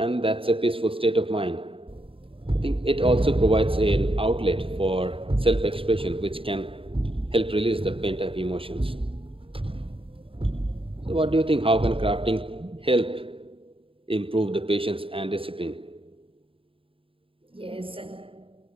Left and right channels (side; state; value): left; late; 0.26 ms